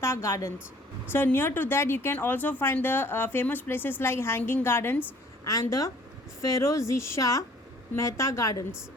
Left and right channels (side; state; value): both; normal; correlation 0.55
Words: Gardens. So near to that you can also find the famous places like Hanging Gardens and the Ferozi Shah Mehta Gardens.